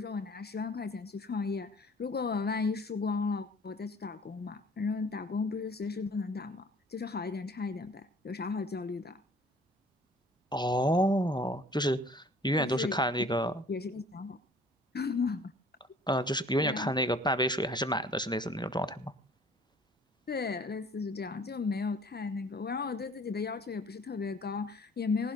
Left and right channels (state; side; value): normal; both; correlation 0.52